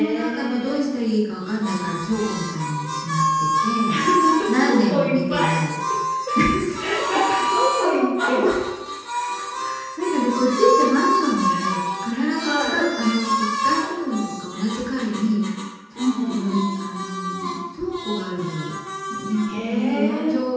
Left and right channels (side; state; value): both; identical; correlation 1.00